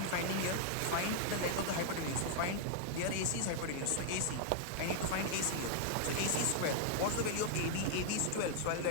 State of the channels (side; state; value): both; different; correlation 0.00